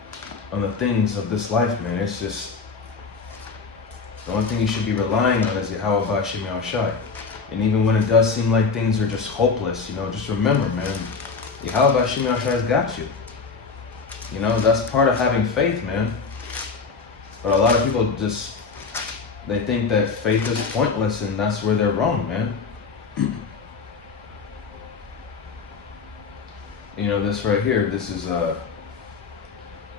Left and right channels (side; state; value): right; quieter; 4.9 dB